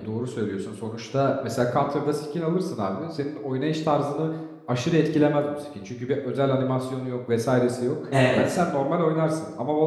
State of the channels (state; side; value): identical; both; correlation 1.00